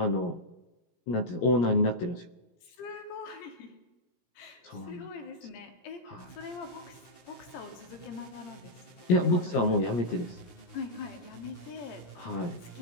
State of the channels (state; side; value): late; right; 17 ms